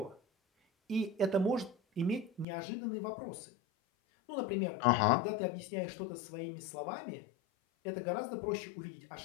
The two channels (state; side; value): drops out; right; at 2.5 s